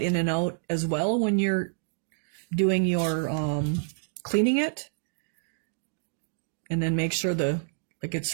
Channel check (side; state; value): left; silent; digital silence